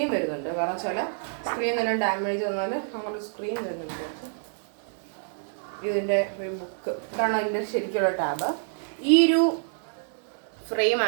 വരുന്നുണ്ട്. കാരണം വെച്ചാൽ സ്ക്രീൻ തന്നെ ഡാമേജ് വന്നാൽ അങ്ങനെ സ്ക്രീൻ വരുന്നുണ്ട്. ഇതിൻ്റെ ഒരു ബുക്ക് ഇതാണ് അതിൻ്റെ ശരിക്കുള്ള ടാബ്. ഈ ഒരു ഫ്രെയിം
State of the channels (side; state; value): left; silent; digital silence